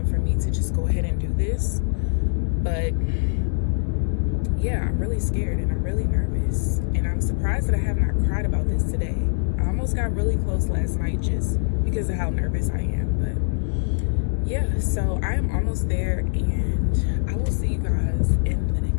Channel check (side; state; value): right; silent; digital silence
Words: for me to just go ahead and do this. But yeah, I'm really scared and I'm really nervous. And I'm surprised that I have not cried about this today. I almost got really close last night just because of how nervous I am. But yeah, so I am almost there and I will see you guys in the